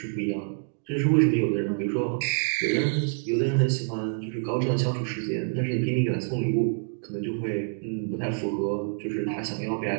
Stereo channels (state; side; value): silent; left; digital silence